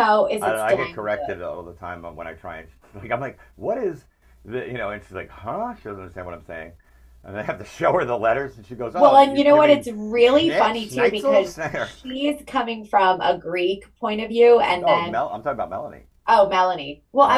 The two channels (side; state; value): both; identical; correlation 1.00